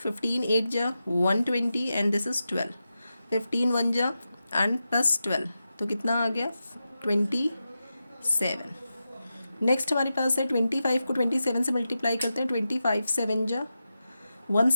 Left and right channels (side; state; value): both; inverted; correlation -0.91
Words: 8 जा 120 एंड दिस इज 12, 15 1 जा एंड +12, तो कितना आ गया, 27। नेक्स्ट हमारे पास है 25 को 27 से मल्टीप्लाई करते हैं, 25 7 जा